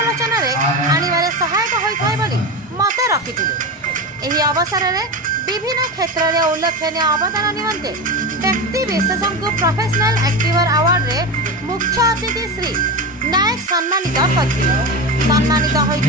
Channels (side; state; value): both; normal; correlation 0.21